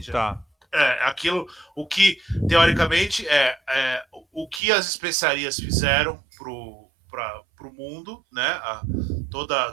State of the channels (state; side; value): drops out; left; at 4.6 s